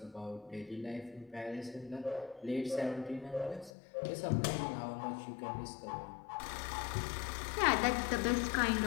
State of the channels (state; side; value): drops out; right; at 3.7 s